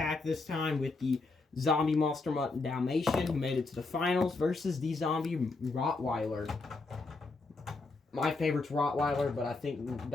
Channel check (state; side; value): quieter; right; 3.6 dB